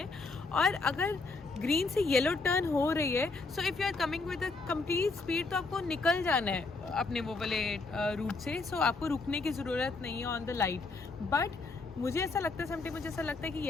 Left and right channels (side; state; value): right; quieter; 3.8 dB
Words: और अगर ग्रीन से येलो टर्न हो रही है so if you are coming with a complete speed तो आपको निकल जाना है अपने वो वाले रूट से. सो आपको रुकने की ज़रूरत नहीं है ऑन द लाइट. बट मुझे ऐसा लगता है समटाइम मुझे ऐसा लगता है कि